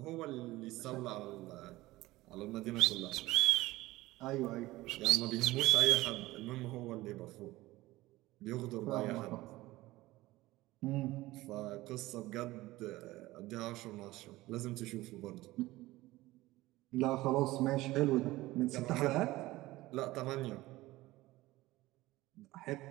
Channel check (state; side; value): quieter; left; 18.3 dB